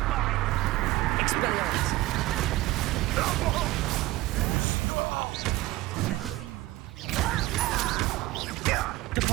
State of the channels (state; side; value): quieter; left; 18.4 dB